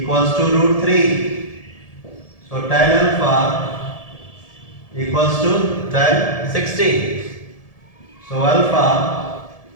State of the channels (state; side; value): late; right; 1.7 ms